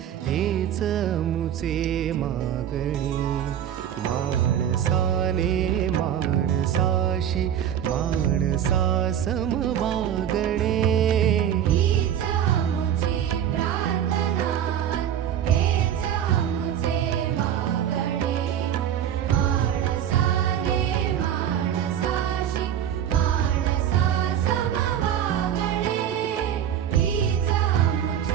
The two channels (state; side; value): quieter; left; 9.9 dB